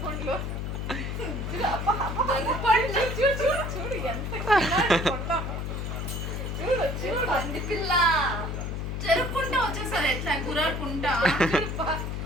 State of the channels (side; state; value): left; noise; hum, 3 dB below the sound